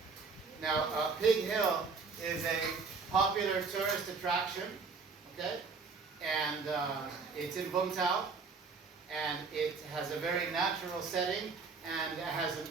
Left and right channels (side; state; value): left; quieter; 4.9 dB